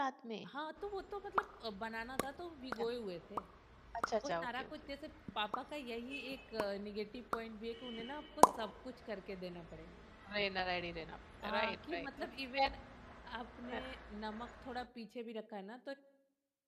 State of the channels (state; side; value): identical; both; correlation 1.00